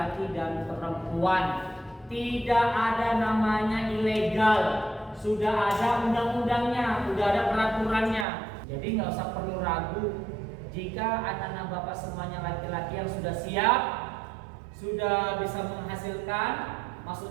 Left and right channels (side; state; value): left; drops out; at 8.2 s